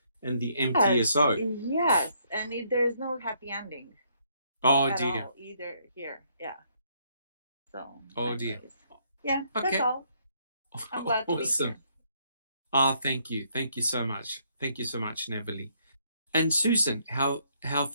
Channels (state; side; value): inverted; both; correlation -0.70